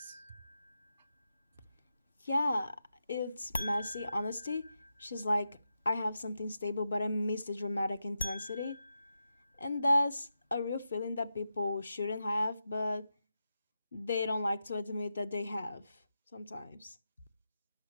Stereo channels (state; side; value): inverted; both; correlation -0.88